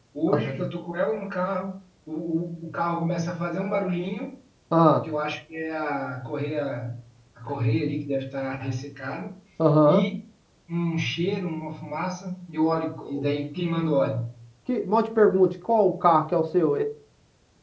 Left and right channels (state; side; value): identical; both; correlation 1.00